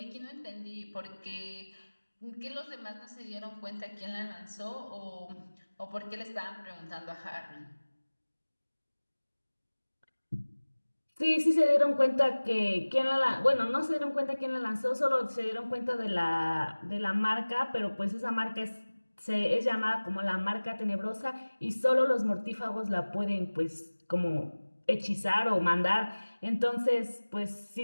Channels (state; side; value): inverted; both; correlation -1.00